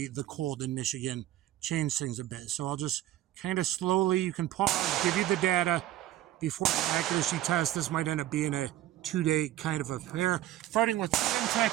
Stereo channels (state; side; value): quieter; left; 13.8 dB